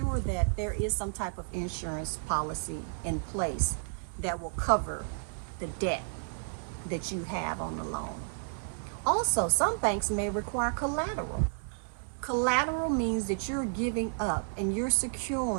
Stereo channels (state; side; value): silent; left; digital silence